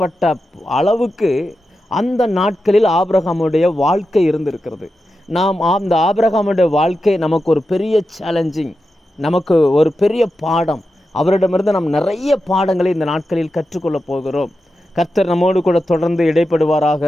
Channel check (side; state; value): both; normal; correlation 0.90